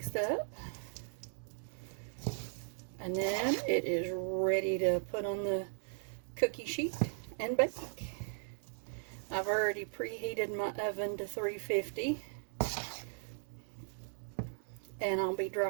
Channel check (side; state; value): left; silent; digital silence